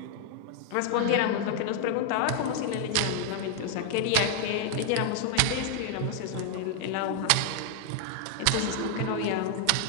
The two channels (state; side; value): different; both; correlation 0.00